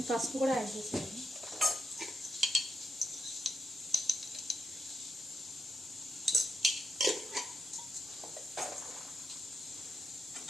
పసుపు కూడా యాడ్ చేశాను.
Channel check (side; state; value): both; normal; correlation 0.84